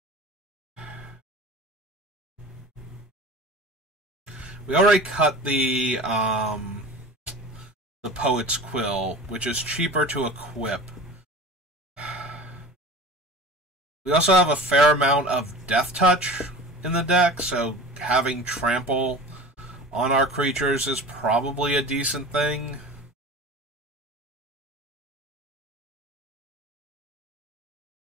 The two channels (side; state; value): both; normal; correlation 0.37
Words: We already cut the Poet's Quill, which is cheaper to equip. We also have a fair amount of Death Touch in the deck, so having Trample on our creatures is probably a decent thing.